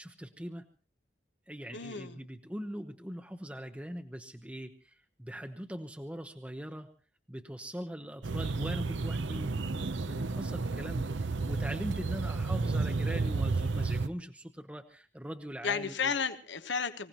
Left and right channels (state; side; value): normal; both; correlation 0.68